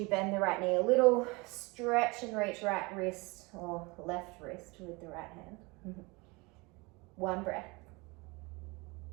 bend the right knee a little, stretch and reach right wrist or left wrist with the right hand. One breath.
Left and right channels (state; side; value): quieter; left; 26.1 dB